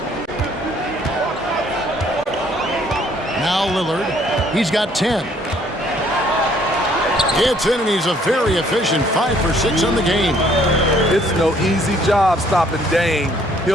Now Lillard. He's got 10. It's in, and he's a very efficient 5 for 6 on the game. It's no easy job stopping Dame.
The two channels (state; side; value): normal; both; correlation 0.63